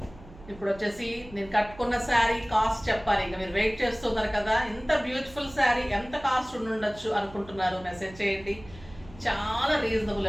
ఇప్పుడు వచ్చేసి నేను కట్టుకున్న శారీ కాస్ట్ చెప్పాలి. ఇంకా మీరు వెయిట్ చేస్తున్నారు కదా, ఇంత బ్యూటిఫుల్ శారీ ఎంత కాస్ట్ ఉండొచ్చు అనుకుంటున్నారు, మెసేజ్ చేయండి. చాలా రీజనబుల్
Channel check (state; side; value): noise; right; hum, 19 dB below the sound